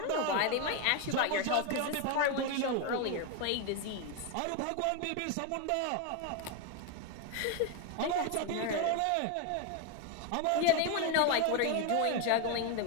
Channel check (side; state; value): both; different; correlation 0.01